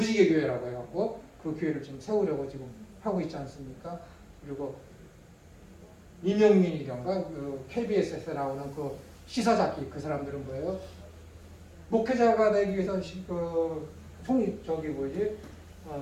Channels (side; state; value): both; identical; correlation 1.00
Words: 교회라고 해갖고 그 교회를 지금 세우려고 지금 하고 있지 않습니까? 그리고 이명민이던가 KBS에서 나오는 그 시사잡기 그 사람들은 뭐예요? 목회자가 되기 위해서